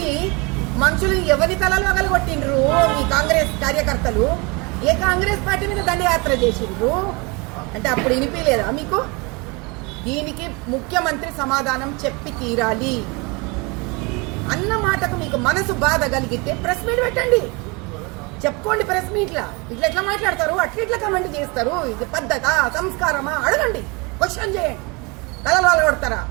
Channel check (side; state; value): left; quieter; 28.2 dB